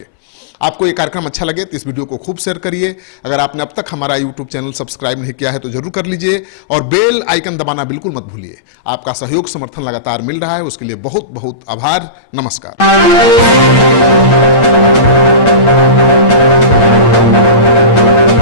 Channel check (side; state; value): right; late; 8.8 ms